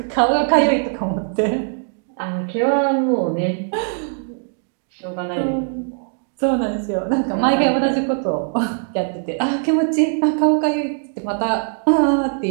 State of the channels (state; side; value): silent; left; 57 dB below the other